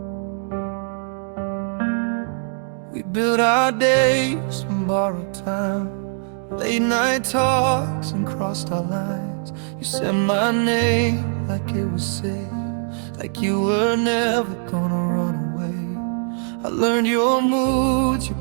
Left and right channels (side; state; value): left; silent; digital silence